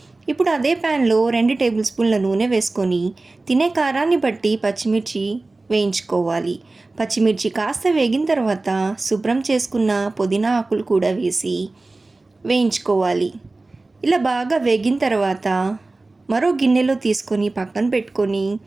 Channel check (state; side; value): quieter; left; 3.2 dB